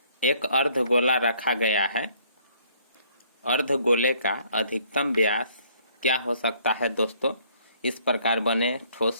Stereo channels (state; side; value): inverted; both; correlation -0.62